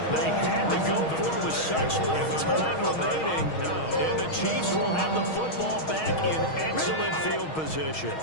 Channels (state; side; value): late; right; 6.3 ms